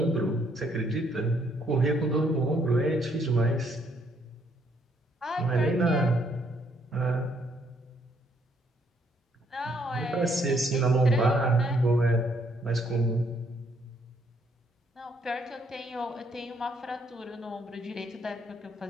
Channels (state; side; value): normal; both; correlation 0.69